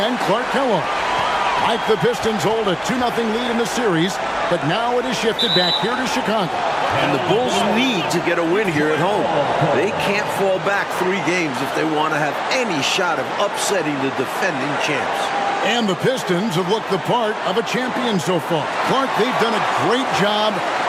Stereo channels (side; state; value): both; identical; correlation 1.00